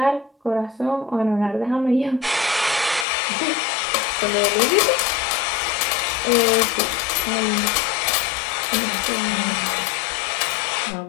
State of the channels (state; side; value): drops out; right; at 3.1 s